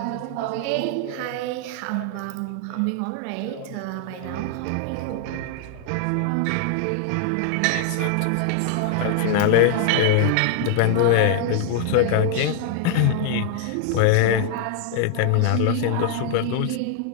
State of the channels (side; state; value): both; different; correlation 0.00